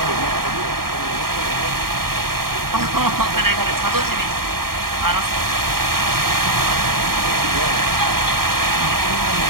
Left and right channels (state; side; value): late; left; 0.94 ms